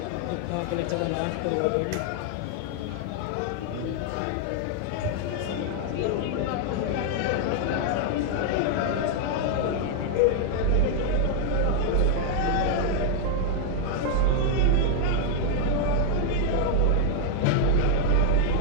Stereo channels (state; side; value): different; both; correlation 0.00